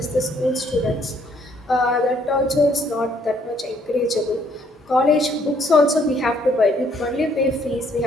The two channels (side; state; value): both; normal; correlation 0.66